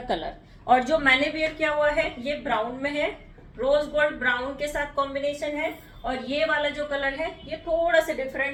कलर। और जो मैंने वेयर किया हुआ है ये ब्राउन में है, रोज गोल्ड ब्राउन के साथ कॉम्बिनेशन है। और ये वाला जो कलर है ये थोड़ा सा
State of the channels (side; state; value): both; identical; correlation 1.00